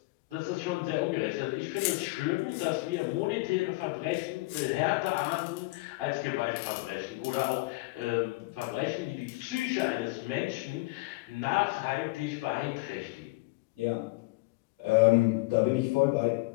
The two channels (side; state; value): right; quieter; 23.3 dB